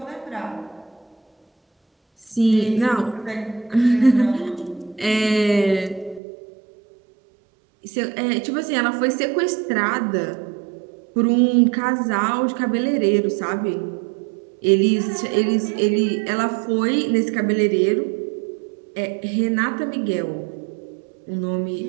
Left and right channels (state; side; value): drops out; left; at 6.2 s